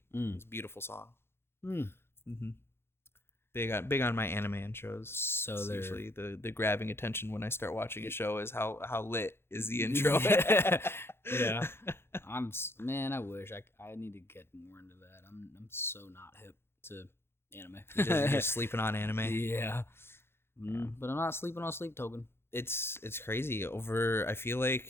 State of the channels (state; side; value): late; right; 0.12 ms